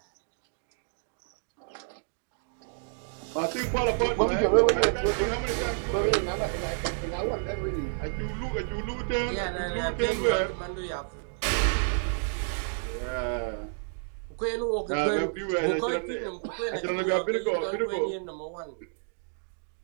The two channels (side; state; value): left; silent; 58 dB below the other